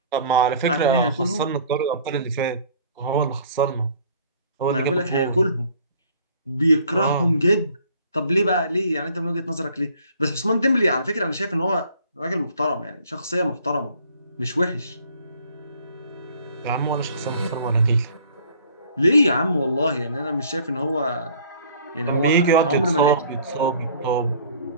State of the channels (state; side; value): inverted; both; correlation -0.54